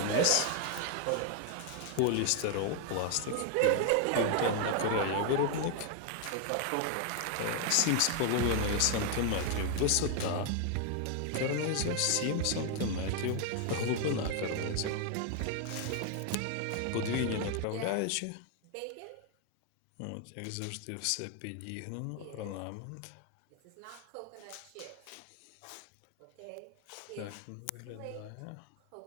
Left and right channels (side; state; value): both; different; correlation 0.00